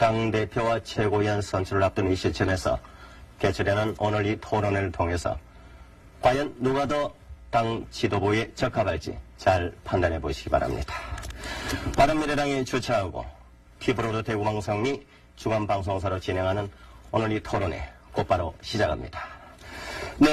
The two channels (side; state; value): both; identical; correlation 1.00